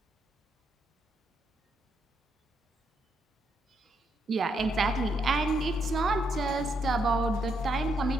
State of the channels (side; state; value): both; normal; correlation 0.77